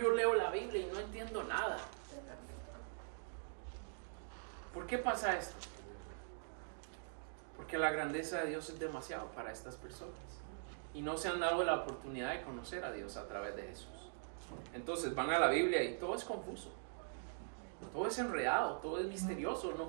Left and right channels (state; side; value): silent; left; digital silence